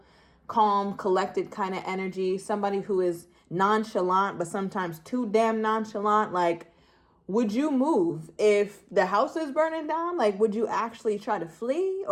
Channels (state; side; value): identical; both; correlation 1.00